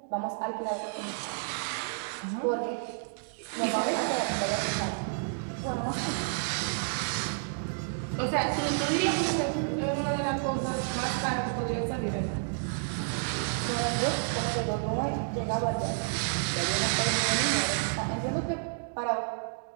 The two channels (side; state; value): left; silent; digital silence